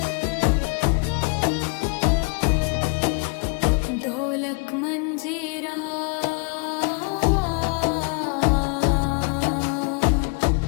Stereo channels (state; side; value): quieter; right; 34.6 dB